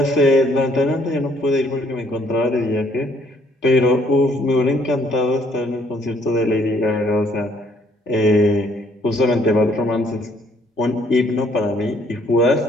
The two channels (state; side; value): normal; both; correlation 0.64